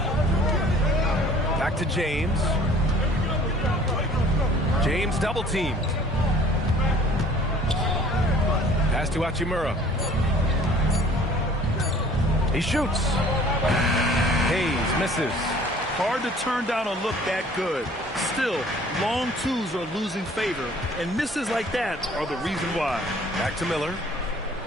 Back to James. James double teamed. Pass to Hachimura. He shoots. Hayes misses. Hard to turn down a look that good. Still, long twos are losing favor, and misses like that are the reason why. Back to Miller.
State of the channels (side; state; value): both; normal; correlation 0.52